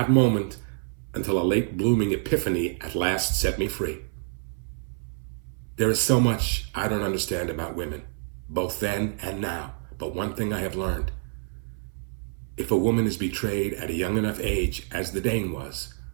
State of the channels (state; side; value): silent; left; 60 dB below the other